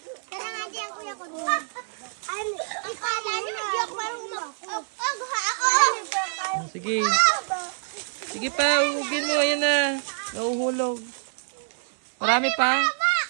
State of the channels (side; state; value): left; silent; 61 dB below the other